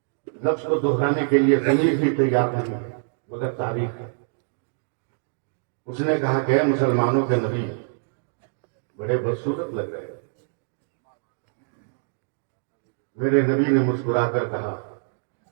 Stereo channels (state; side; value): silent; left; digital silence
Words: لفظ کو دہرانے کے لیے ضمیر بھی تیار نہیں ہے مگر تاریخ ہے۔ اس نے کہا کہ اے مسلمانوں کے نبی، بڑے بدصورت لگ رہے ہیں۔ میرے نبی نے مسکرا کر کہا،